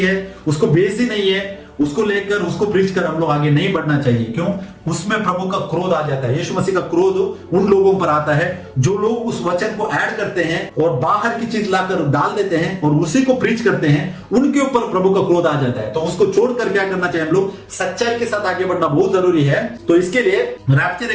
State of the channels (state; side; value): identical; both; correlation 1.00